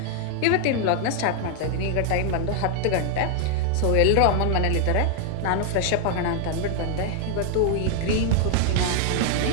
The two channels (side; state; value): both; different; correlation 0.00